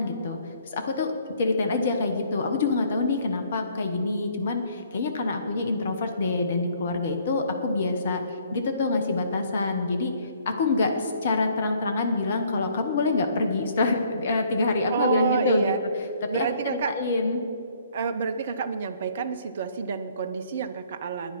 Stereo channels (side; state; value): both; inverted; correlation -0.62